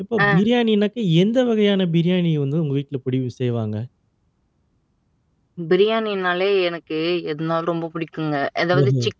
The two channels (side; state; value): both; identical; correlation 1.00